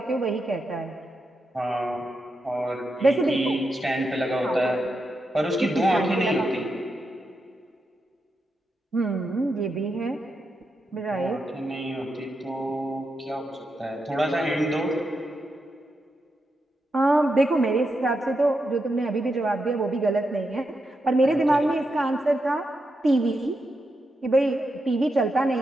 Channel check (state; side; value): normal; both; correlation 0.85